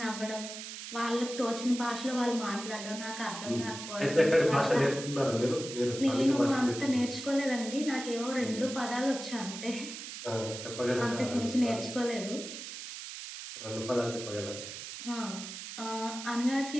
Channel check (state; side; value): noise; right; hiss, 9 dB below the sound